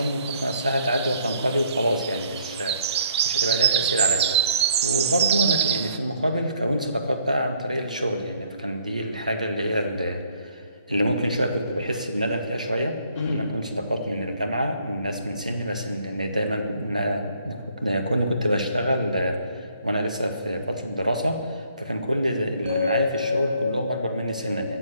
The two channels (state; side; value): inverted; both; correlation -0.64